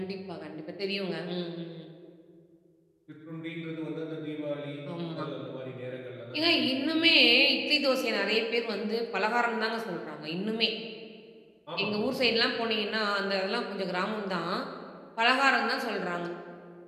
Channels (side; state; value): both; identical; correlation 1.00